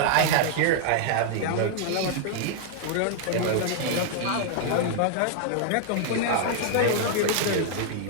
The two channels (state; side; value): different; both; correlation 0.00